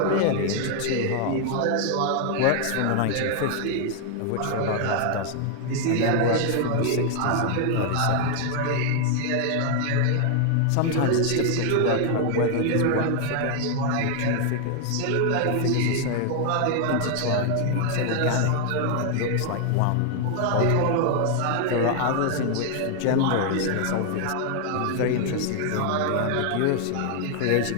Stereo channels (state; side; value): different; both; correlation 0.00